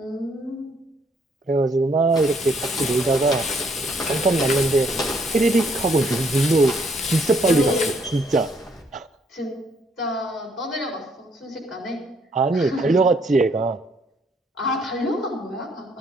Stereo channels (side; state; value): both; normal; correlation 0.68